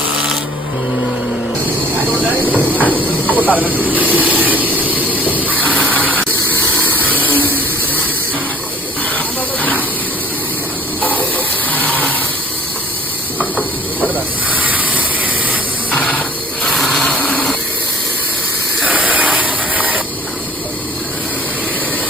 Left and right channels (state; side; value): normal; both; correlation 0.52